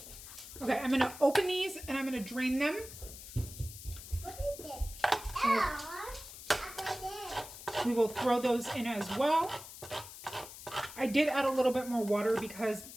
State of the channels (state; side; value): noise; left; hiss, 14 dB below the sound